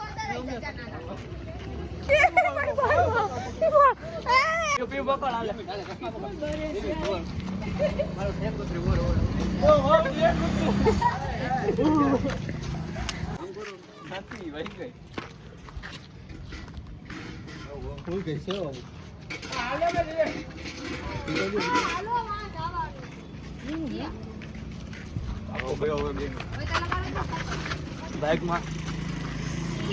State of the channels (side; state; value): both; identical; correlation 1.00